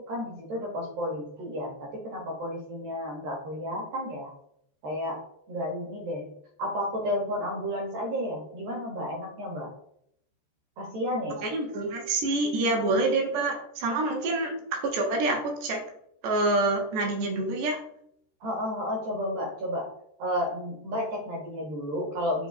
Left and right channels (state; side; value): late; left; 13 ms